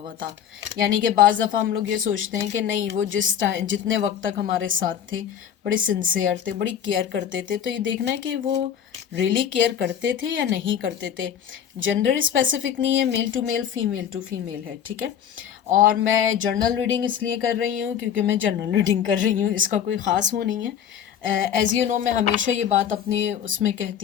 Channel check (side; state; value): right; quieter; 9.0 dB